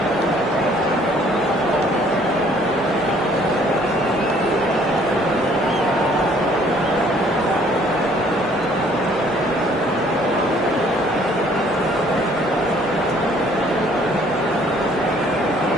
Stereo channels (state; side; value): normal; both; correlation 0.59